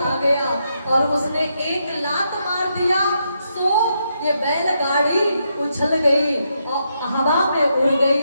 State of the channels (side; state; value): both; inverted; correlation -0.80